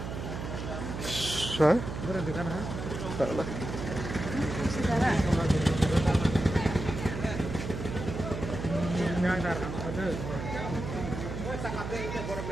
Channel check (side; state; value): right; noise; hum, 6 dB below the sound